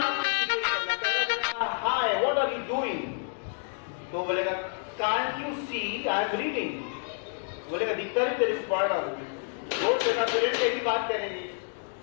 क्रिएट करना। पहला बोलेगा hi what are you doing, तो बोलेगा can't you see I am reading, बोलेगा दिक्कत है तेरे पढ़ रहा हूं। वो तेरा पेरेंट कैसी बात करेंगे।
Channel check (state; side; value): silent; right; 59 dB below the other